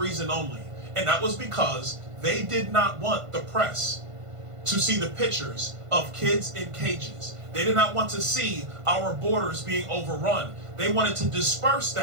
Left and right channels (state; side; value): late; left; 1.5 ms